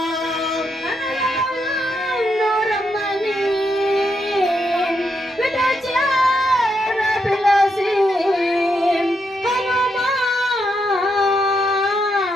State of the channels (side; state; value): both; normal; correlation 0.81